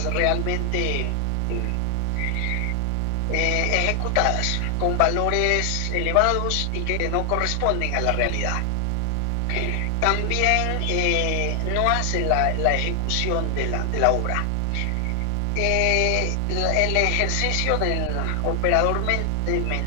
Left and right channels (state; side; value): different; both; correlation 0.00